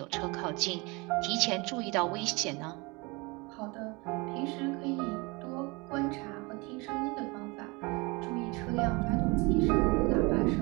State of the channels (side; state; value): left; quieter; 26.6 dB